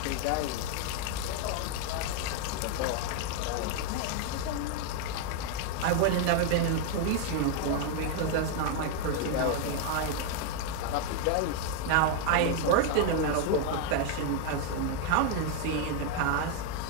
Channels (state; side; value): different; both; correlation 0.00